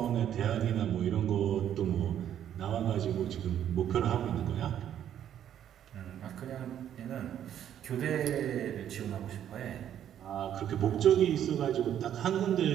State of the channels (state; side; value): quieter; left; 10.3 dB